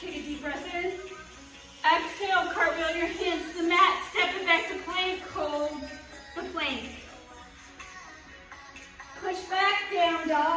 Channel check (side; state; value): both; identical; correlation 1.00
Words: Take a deep breath in. Exhale, cartwheel your hands to the mat. Step it back to plank. Hold the plank. Push back, down